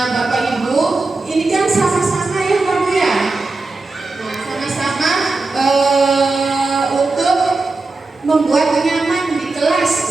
Bapak Ibu, ini kan sama-sama ya Pak Bu ya. Nah, sama-sama untuk membuat nyaman di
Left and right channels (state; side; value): quieter; left; 3.5 dB